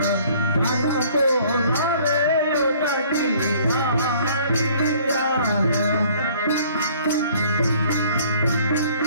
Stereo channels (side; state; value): both; inverted; correlation -0.56